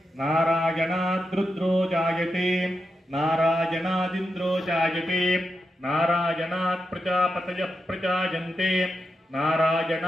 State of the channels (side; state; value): both; normal; correlation 0.87